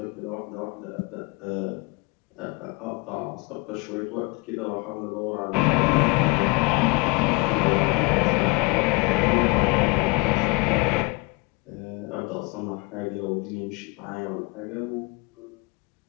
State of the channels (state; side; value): quieter; right; 28.7 dB